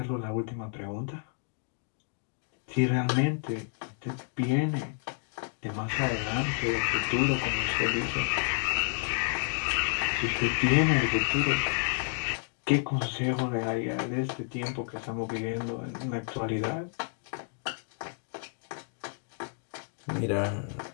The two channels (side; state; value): right; silent; 57 dB below the other